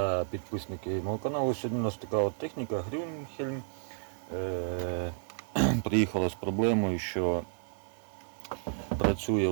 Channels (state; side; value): silent; left; 55 dB below the other